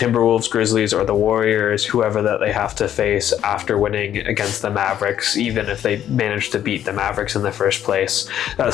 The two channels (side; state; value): right; quieter; 10.6 dB